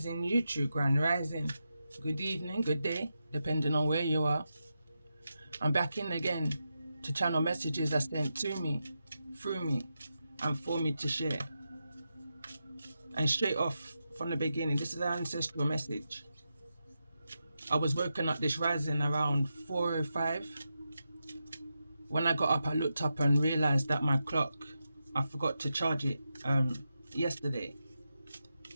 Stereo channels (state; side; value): inverted; both; correlation -0.88